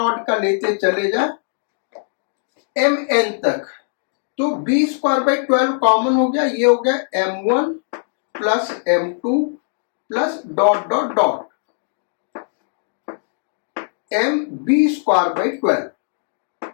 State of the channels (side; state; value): right; silent; digital silence